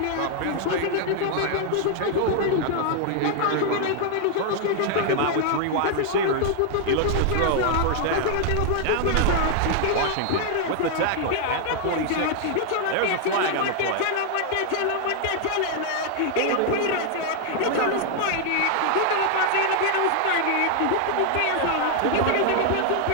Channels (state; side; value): different; both; correlation 0.00